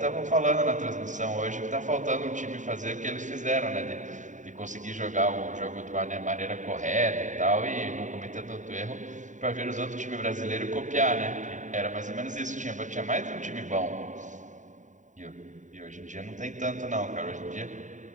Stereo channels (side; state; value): left; late; 0.36 ms